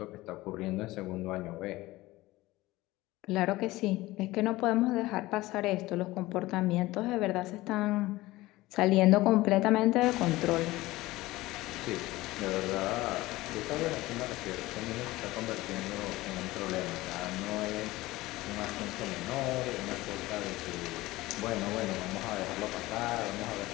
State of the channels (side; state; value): right; quieter; 18.6 dB